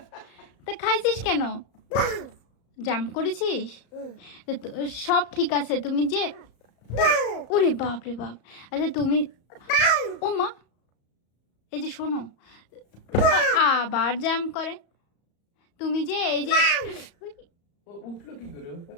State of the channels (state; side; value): late; right; 35 ms